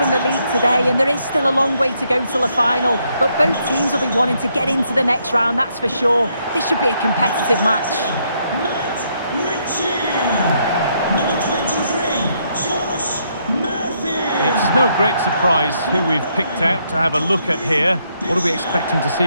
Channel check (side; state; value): both; inverted; correlation -0.74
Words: the league today, and there is still a long way to go till the final. But both teams will be wanting to get into the next round, that's for sure. This should be a competitive match. Matt Ritchie. Number 23, Josh Murphy. It's no great surprise who we've picked out to have a look at here. What are we expecting to